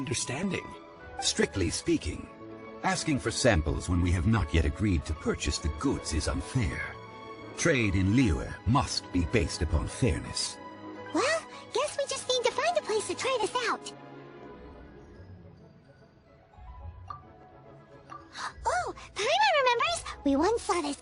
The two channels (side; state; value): both; identical; correlation 1.00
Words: Strictly speaking, asking for samples when we have not yet agreed to purchase the goods is unfair. Trade in liyue must be based upon fairness. Well, guess we just need to find a place to try this out. Oh, Paimon remembers! We once saw this